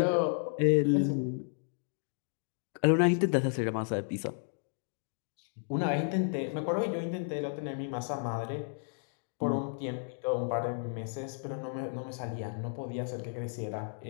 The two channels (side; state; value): right; silent; digital silence